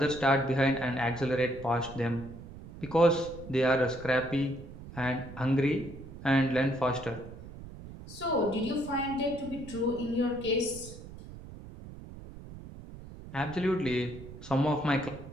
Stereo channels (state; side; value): noise; right; rumble, 14 dB below the sound